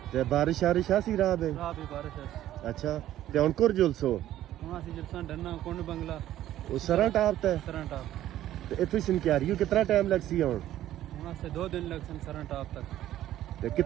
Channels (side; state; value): left; quieter; 13.0 dB